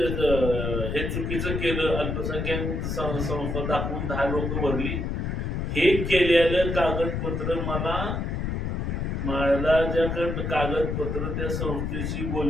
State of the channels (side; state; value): left; noise; rumble, 2 dB below the sound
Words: हे चुकीचं केलं अल्पसंख्याक संस्था दाखवून 10 लोक भरली. हे केलेलं कागदपत्र मला ज्याकडं कागदपत्र त्या संस्थेची